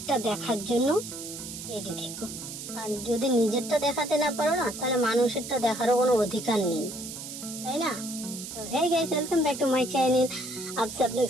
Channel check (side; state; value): right; noise; hiss, 9 dB below the sound